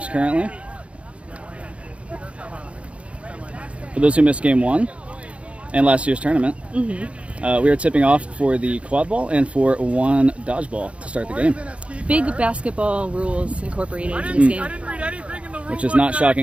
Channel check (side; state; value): left; late; 0.061 ms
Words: currently. For those who missed game 1 and last year's tournament, we are tipping off for the Quadball and for one dodgeball to start the game. Big basketball rules incorporated into this game. Which is not